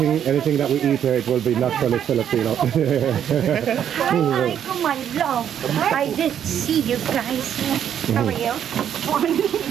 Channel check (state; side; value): quieter; left; 9.4 dB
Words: anything that we eat here, it will be naturally Filipino. Hi, my love. I did see you guys. How are you?